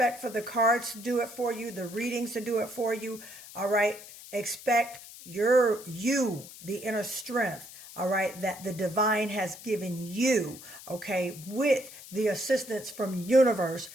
for the cards to do it for you, the readings to do it for you, all right? Expect the inner strength, all right, that the divine has given you, okay, with the assistance from universe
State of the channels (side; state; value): left; noise; hiss, 16 dB below the sound